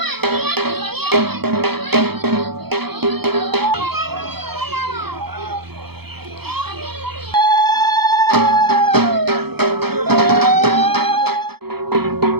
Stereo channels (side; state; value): left; late; 0.96 ms